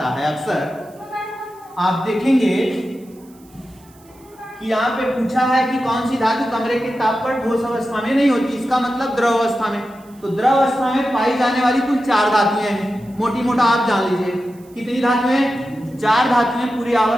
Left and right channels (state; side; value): noise; right; hiss, 29 dB below the sound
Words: है अक्सर। आप देखेंगे कि यहाँ पे पूछा है कि कौन सी धातु कमरे के ताप पर ठोस अवस्था में नहीं होती, इसका मतलब द्रव अवस्था में। तो द्रव अवस्था में पाई जाने वाली कुल 4 धातुएं हैं, मोटी मोटा आप जान लीजिए। कितनी धातुएं? 4 धातुएं पूरी